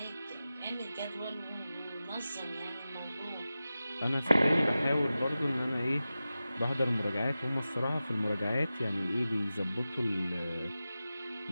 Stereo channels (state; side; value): inverted; both; correlation -0.94